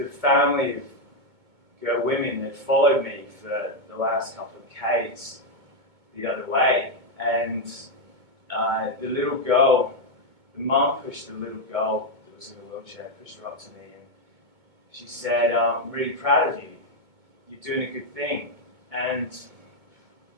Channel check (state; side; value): late; left; 2.2 ms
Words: family of women that followed me for the last couple of k's the other way. And the little girl, the mum pushed the little girl that was in the wheelchair, pushed her up to me, and she said, I'm really proud of you. You're doing a good thing. And